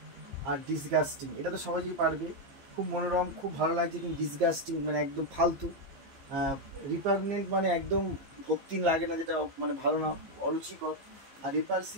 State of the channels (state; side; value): late; left; 15 ms